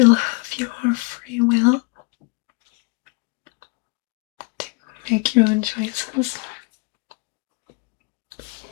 have your free will to make your own choices.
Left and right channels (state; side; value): quieter; right; 27.7 dB